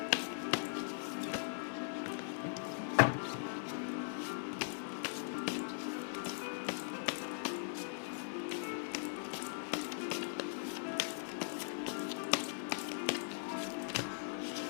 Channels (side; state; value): right; silent; 51 dB below the other